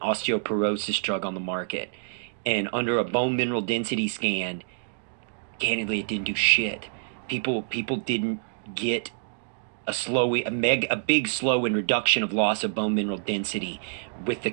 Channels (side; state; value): left; silent; digital silence